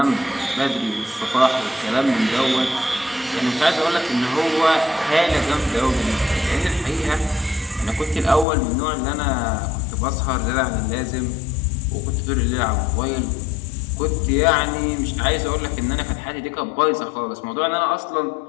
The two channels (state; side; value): drops out; right; at 8.5 s